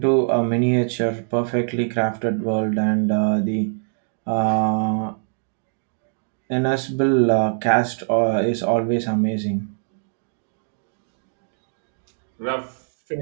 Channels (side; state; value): left; silent; digital silence